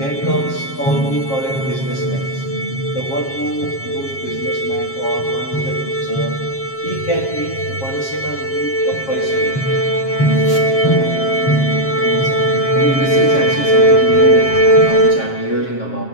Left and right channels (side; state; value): right; late; 7.4 ms